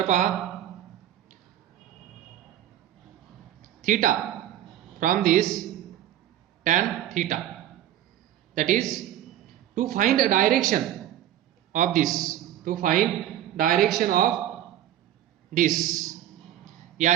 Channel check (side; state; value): left; quieter; 12.1 dB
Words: पहा, theta from this tan theta, that is to find a direction of this, to find direction of this,